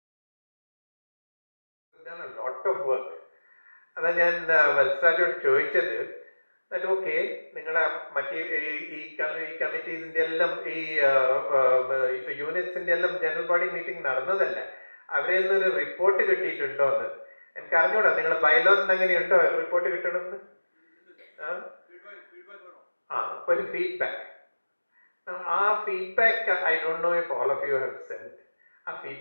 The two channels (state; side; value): inverted; both; correlation -1.00